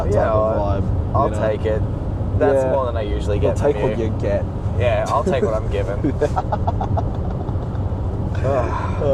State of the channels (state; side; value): identical; both; correlation 1.00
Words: type of vibe. I'll take it. That's more than I usually get. You'll take what you get. Yeah, I'll take what I'm given.